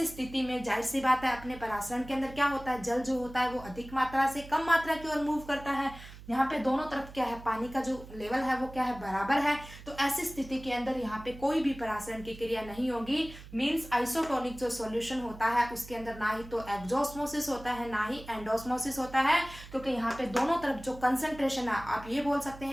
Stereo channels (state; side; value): noise; right; hum, 16 dB below the sound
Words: स्थिति में जाहिर सी बात है अपने परासरण के अंदर क्या होता है, जल जो होता है वो अधिक मात्रा से कम मात्रा की ओर मूव करता है। यहाँ पे दोनों तरफ क्या है, पानी का जो लेवल है वो क्या है, बराबर है। तो ऐसी स्थिति के अंदर यहाँ पे कोई भी परासरण की क्रिया नहीं होगी। मीन्स आइसोटोनिक जो सॉल्यूशन होता है उसके अंदर ना ही तो एक्सोस्मोसिस होता है, ना ही एंडोस्मोसिस होता है, क्योंकि यहाँ पे दोनों तरफ जो कंसंट्रेशन है, आप ये बोल सकते